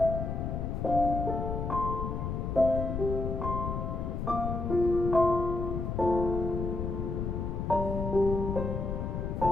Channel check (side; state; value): left; noise; rumble, 2 dB below the sound